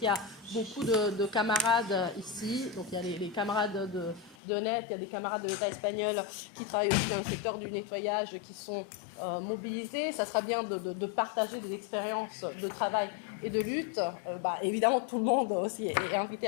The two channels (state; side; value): drops out; right; at 4.4 s